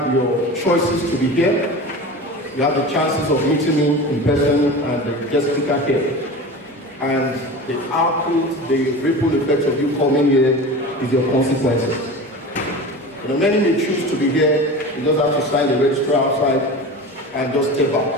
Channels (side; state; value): both; normal; correlation 0.32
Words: your choices to be here. You have the chances of meeting me in person and the guest speaker here. And the output, the ripple effect of you coming here is your consequences. You know, many may choose to be here. You just have to sign the register outside and just step back.